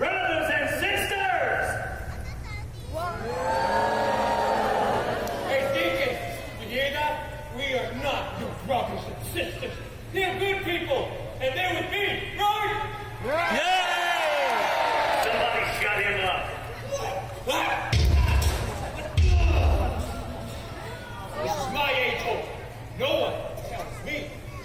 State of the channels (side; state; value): both; identical; correlation 1.00